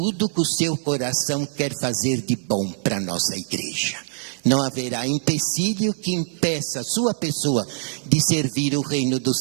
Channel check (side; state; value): left; silent; digital silence